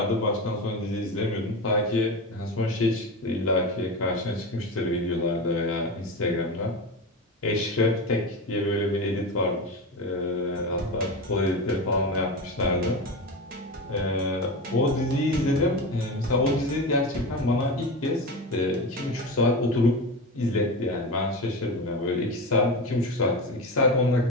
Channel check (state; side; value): normal; both; correlation 0.23